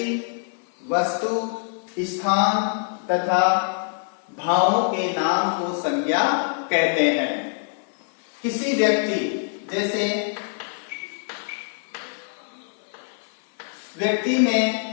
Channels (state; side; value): silent; right; 62 dB below the other